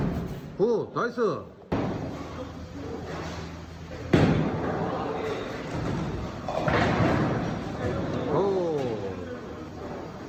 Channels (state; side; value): identical; both; correlation 1.00